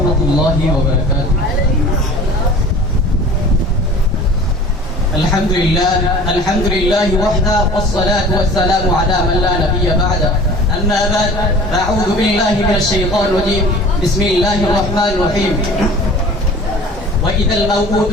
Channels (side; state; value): both; normal; correlation 0.43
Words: ওয়া বারাকাতুহু। الحمد لله وحده والصلاة والسلام على من لا نبي بعده. أما بعد فأعوذ بالله من الشيطان الرجيم. بسم الله الرحمن الرحيم. وإذا